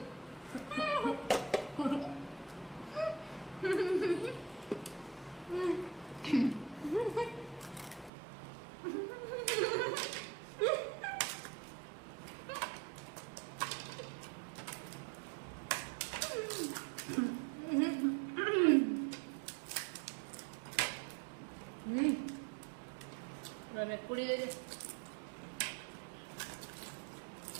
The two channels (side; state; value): left; drops out; at 8.1 s